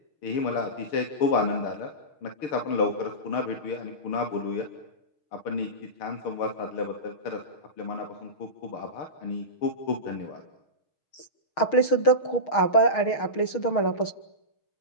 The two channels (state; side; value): late; right; 6.3 ms